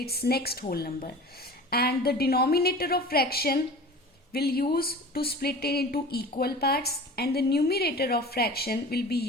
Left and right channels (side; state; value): both; normal; correlation 0.38